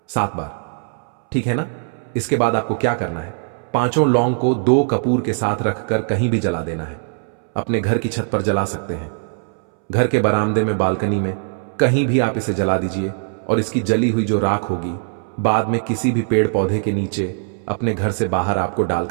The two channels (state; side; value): silent; left; 65 dB below the other